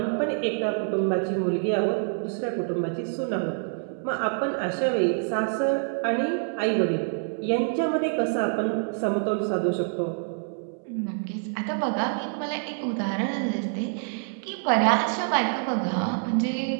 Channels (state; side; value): silent; left; 61 dB below the other